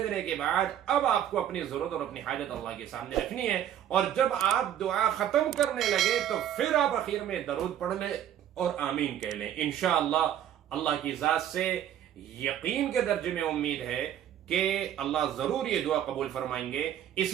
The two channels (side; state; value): left; quieter; 10.7 dB